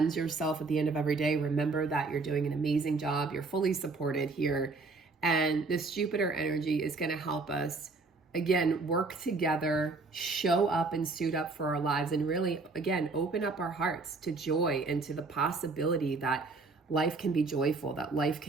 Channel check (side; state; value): left; quieter; 3.8 dB